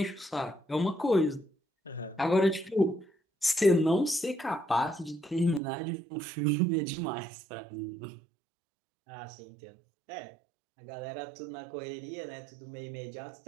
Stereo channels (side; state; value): left; drops out; at 5.6 s